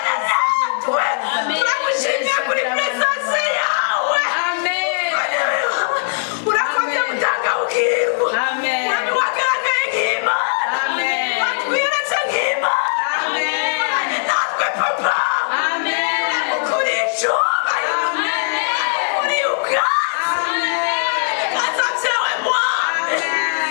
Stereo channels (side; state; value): right; silent; digital silence